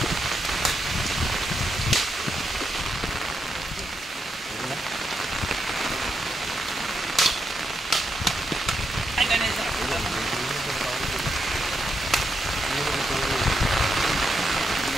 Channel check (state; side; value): normal; both; correlation 0.82